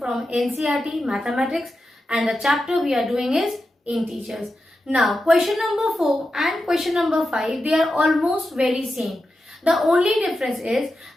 NCERT Mathematics, and the chapter we are doing is integers. Now question number 4 and question number 5, they are almost very same. The only difference is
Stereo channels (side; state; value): both; normal; correlation 0.90